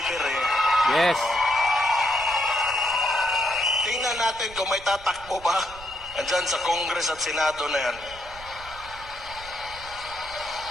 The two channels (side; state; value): right; noise; rumble, 18 dB below the sound